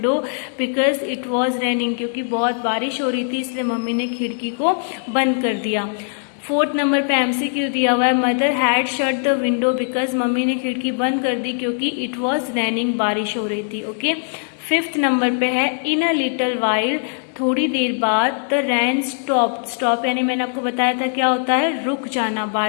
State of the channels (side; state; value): right; silent; 65 dB below the other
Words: because it was raining, क्योंकि बहुत बारिश हो रही थी इसलिए मम्मी ने खिड़की को बंद कर दिया। फोर्थ नंबर पे एमसीक्यू दिया हुआ है mother had shut the window because, mummy ने खिड़की बंद कर दी क्योंकि इट वॉज रेनिंग, बारिश हो रही थी। ओके, फिफ्थ नंबर पे है इन अ लिटिल वाइल, थोड़ी देर बाद, द रैन स्टॉप, स्टॉप यानी मैंने आपको बताया था क्या होता है, रुक जाना,